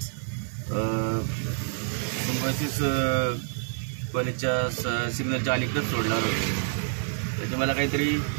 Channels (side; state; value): left; silent; 60 dB below the other